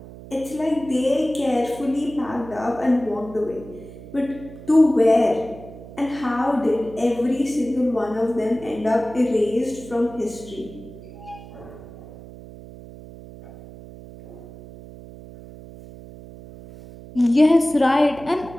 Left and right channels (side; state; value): right; noise; hum, 16 dB below the sound